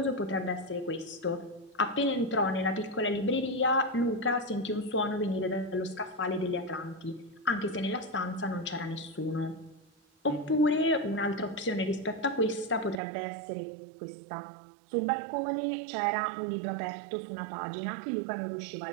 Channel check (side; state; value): left; drops out; at 13.0 s